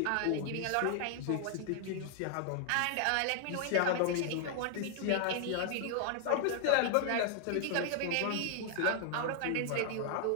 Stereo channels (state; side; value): different; both; correlation 0.00